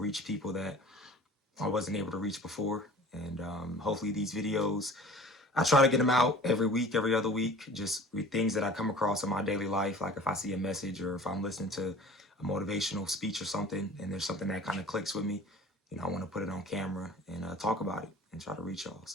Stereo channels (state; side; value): normal; both; correlation 0.44